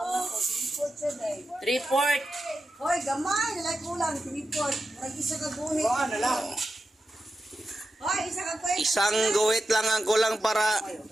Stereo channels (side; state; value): both; normal; correlation 0.90